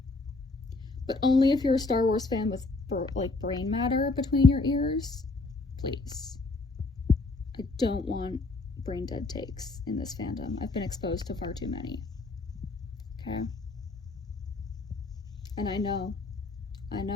But only if you're a Star Wars fan with, like, brain matter between your ears. Please. I don't want brain dead takes in this fandom. I've been exposed to far too many. Okay? And I know,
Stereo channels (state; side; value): quieter; right; 3.4 dB